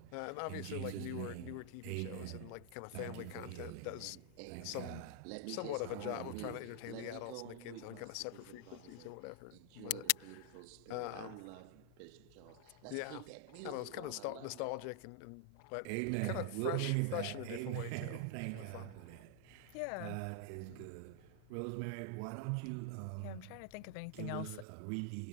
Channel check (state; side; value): different; both; correlation 0.00